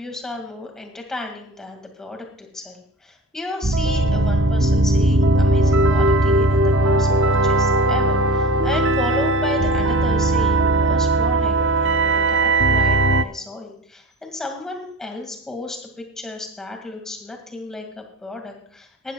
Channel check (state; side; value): normal; both; correlation 0.36